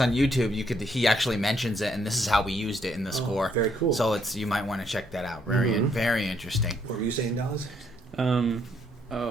on YouTube. He actually mentions it, and this is how we used it in the score. Very cool. So you might want to check that out. Very interesting. What were you saying, Dallas?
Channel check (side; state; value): both; normal; correlation 0.71